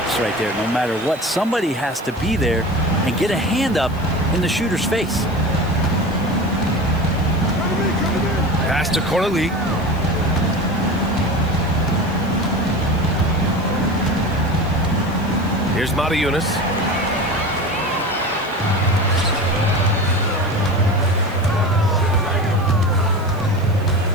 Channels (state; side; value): noise; right; hiss, 25 dB below the sound